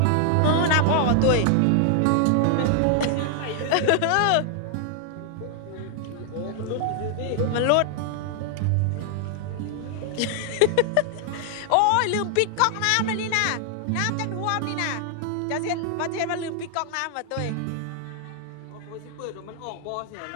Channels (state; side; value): different; both; correlation 0.00